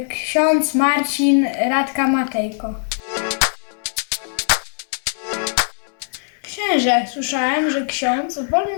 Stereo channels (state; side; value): silent; right; 63 dB below the other